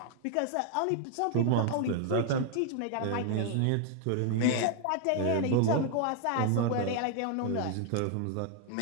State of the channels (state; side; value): different; both; correlation 0.00